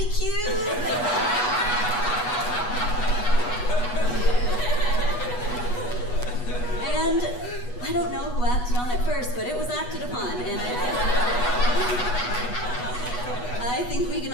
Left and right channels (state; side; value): late; right; 8.2 ms